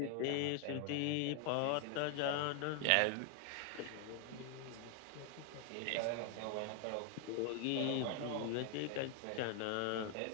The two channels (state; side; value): different; both; correlation 0.00